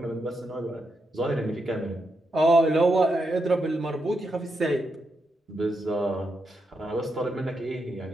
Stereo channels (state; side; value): normal; both; correlation 0.83